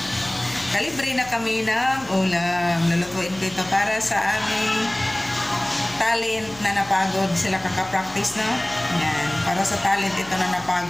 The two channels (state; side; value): noise; left; hum, 22 dB below the sound